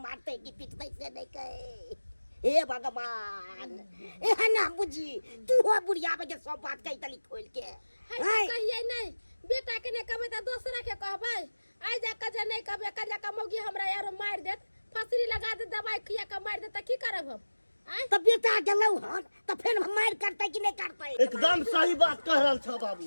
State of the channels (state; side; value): inverted; both; correlation -1.00